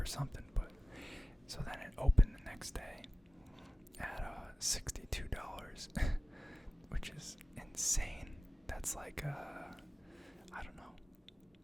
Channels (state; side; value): normal; both; correlation 0.97